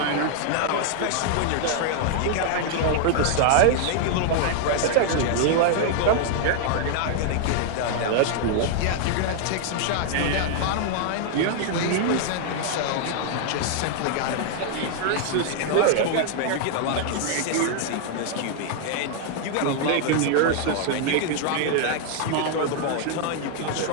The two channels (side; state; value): both; different; correlation 0.00